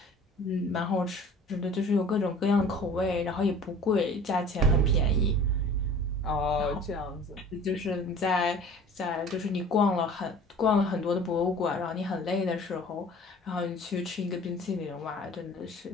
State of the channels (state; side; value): normal; both; correlation 0.46